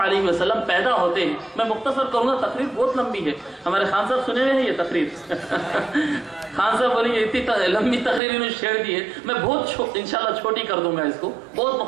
وسلم پیدا ہوتے ہیں، میں مختصر کروں گا، تقریر بہت لمبی ہے، ہمارے خان صاحب سنے ہوئے ہیں یہ تقریر؟ خان صاحب بولیں گے اتنی لمبی تقریر انہوں نے شیئر دی ہے، میں بہت انشاءاللہ چھوٹی کر دوں گا، اس کو بہت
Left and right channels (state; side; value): drops out; left; at 8.2 s